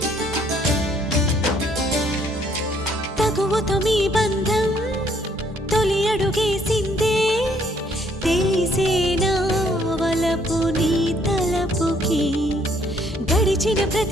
తగువతో మీ బంధం తొలి అడుగేసిందే తెలిసేనా వలపు నీ తలపుకి గడిచిన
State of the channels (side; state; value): both; normal; correlation 0.66